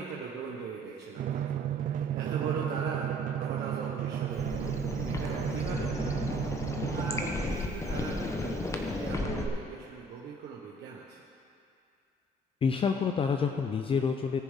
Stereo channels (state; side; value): normal; both; correlation 0.57